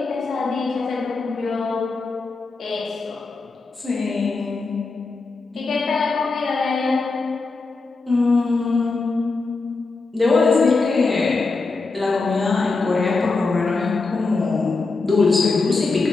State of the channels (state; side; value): quieter; right; 3.9 dB